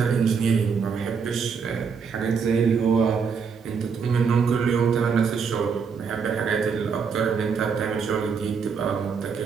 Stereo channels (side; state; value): left; quieter; 6.0 dB